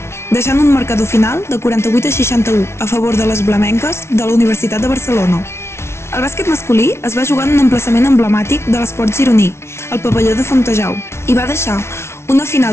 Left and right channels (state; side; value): late; right; 0.13 ms